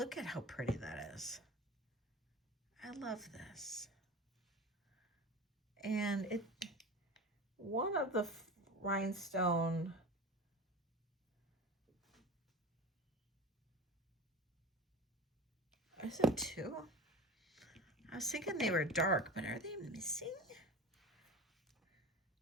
at how pretty that is. I love this. And it, one of the rhinestone, is it two? I was thinking they were dark, but are they missing?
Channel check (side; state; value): both; normal; correlation 0.34